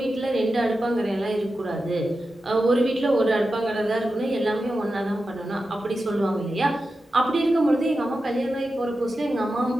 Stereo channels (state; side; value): normal; both; correlation 0.91